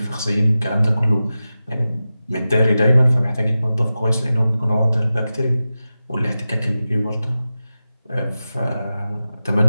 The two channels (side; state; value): both; inverted; correlation -0.93